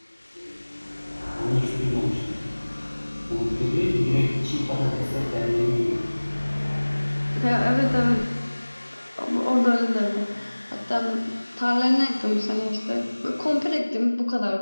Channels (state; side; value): inverted; both; correlation -1.00